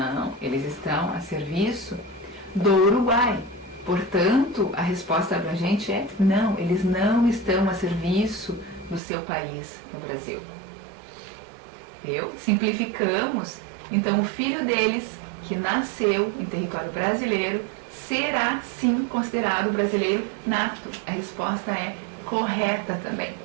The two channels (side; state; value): left; drops out; at 9.0 s